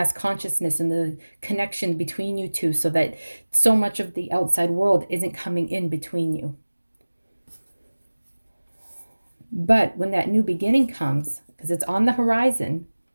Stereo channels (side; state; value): both; inverted; correlation -1.00